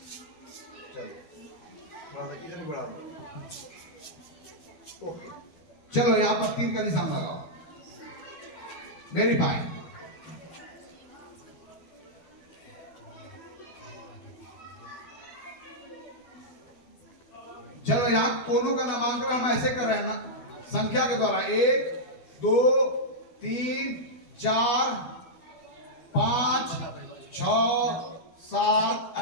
थोड़ा सा इधर भी बढ़ा दो। ओके, चलो यहाँ पर तीर का निशान लगाओ, वेरी फाइन। चलो यहाँ कोनों का नामांकन हम ऐसे कर रहे हैं ना, संख्या के द्वारा 1 2 3 4 5 6 7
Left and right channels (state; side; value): late; right; 12 ms